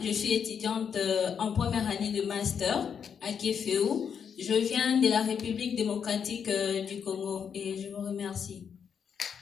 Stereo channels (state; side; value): quieter; right; 7.3 dB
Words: je suis étudiante en première année de master à Kéféou. Je viens de la République démocratique du Congo et je vous remercie.